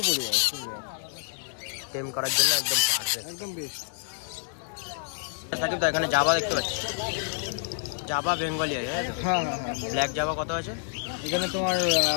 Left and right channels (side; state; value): right; silent; digital silence